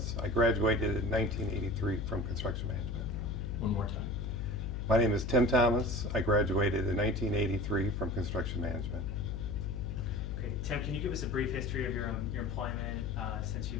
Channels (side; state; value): left; noise; hum, 3 dB below the sound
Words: I graduated in 1983 from Construction Management. One more time. My name is Tim Thomas. I graduated in 1983 from Construction Management. Okay, Tim, can you give us a brief history of your employment since